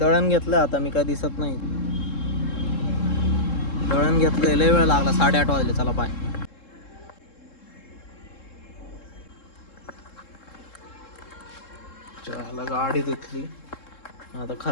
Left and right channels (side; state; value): right; late; 3.7 ms